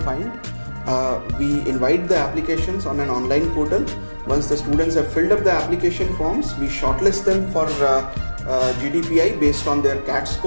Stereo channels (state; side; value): inverted; both; correlation -1.00